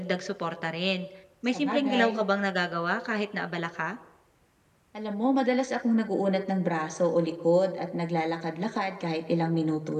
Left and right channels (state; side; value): identical; both; correlation 1.00